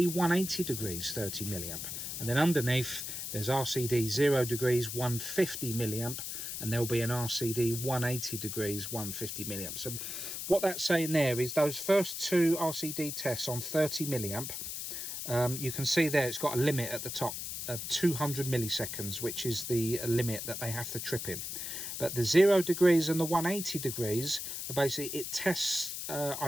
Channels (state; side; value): noise; left; hiss, 5 dB below the sound